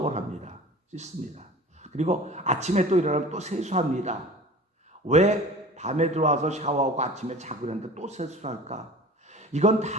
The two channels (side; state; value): both; normal; correlation 0.41